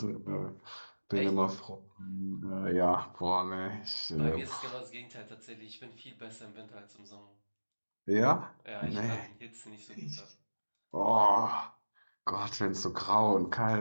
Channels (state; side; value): inverted; both; correlation -1.00